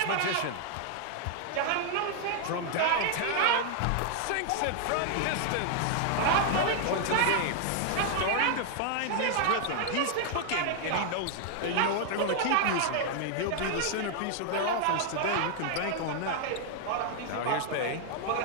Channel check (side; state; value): both; different; correlation 0.00